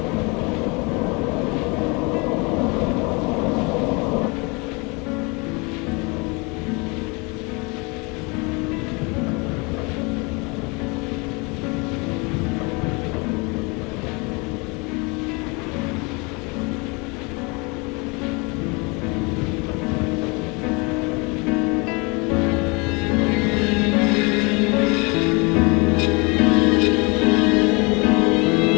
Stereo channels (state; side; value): quieter; right; 28.8 dB